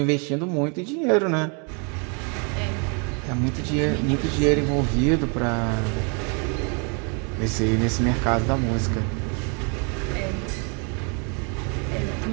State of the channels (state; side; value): quieter; left; 35.9 dB